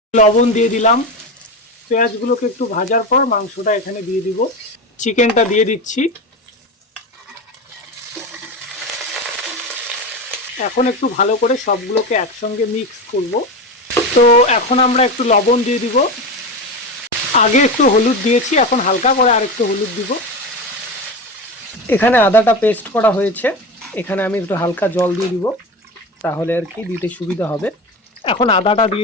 লবণ দিয়ে দিলাম। পেঁয়াজগুলোকে একটু ভাজার পর মাংসটা এখানে দিয়ে দিব। চিকেনটা দিয়ে দিচ্ছি। এখন একটু ভালো করে সবগুলোকে একসঙ্গে মিক্স করব। তো এখন আমরা একটু লবণ দিয়ে দিব। আগে একটু হলুদ দিয়েছি, এখন হালকা করে আর একটু হলুদ দিব। এখানে আদাটা পেস্ট করা হয়েছে, এখানে আমি একটু হালকা জল দিয়ে দিব, তাহলে আর কি দিতে সুবিধা হবে। এখন আদাটা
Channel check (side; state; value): both; normal; correlation 0.23